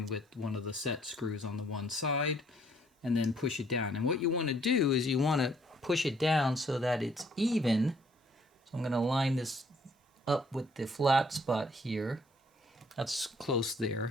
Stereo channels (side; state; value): both; normal; correlation 0.64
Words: with one of the set screws on the one side, and then push it down. And what you want to do is you want to push it down so that it's even. So I'm going to line this up with the flat spot here. That's close